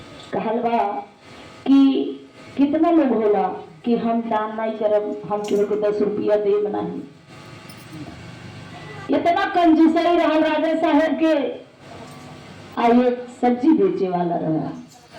कहलवा कि कितना लोग होला कि हम दान नहीं करब, हम केहू को 10 रुपया देब नहीं। इतना कंजूसई रहा राजा साहेब के। आइए सब्जी बेचे वाला रहा।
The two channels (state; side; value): identical; both; correlation 1.00